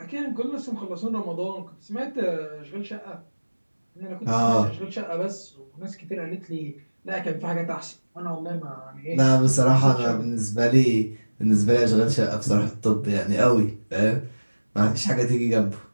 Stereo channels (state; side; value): inverted; both; correlation -1.00